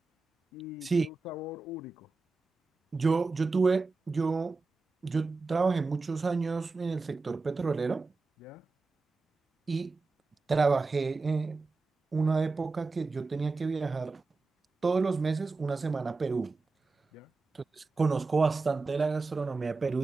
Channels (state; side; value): quieter; left; 3.9 dB